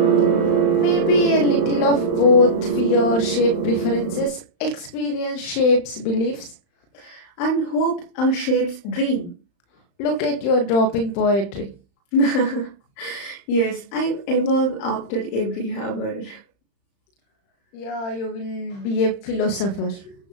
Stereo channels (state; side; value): late; right; 35 ms